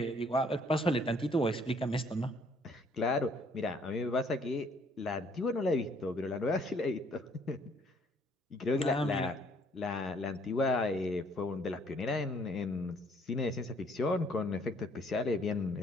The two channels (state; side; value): normal; both; correlation 0.63